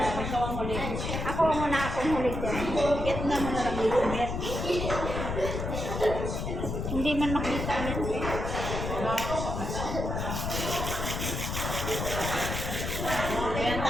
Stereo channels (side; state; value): left; noise; rumble, 3 dB below the sound